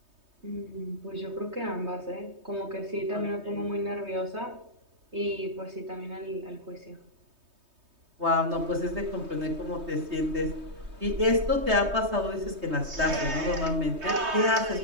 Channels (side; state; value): left; late; 3.2 ms